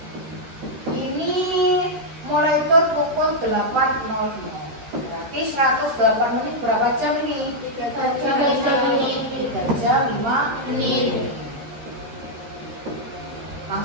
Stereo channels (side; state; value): left; late; 13 ms